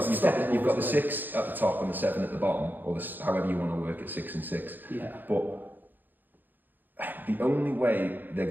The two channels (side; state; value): left; late; 0.088 ms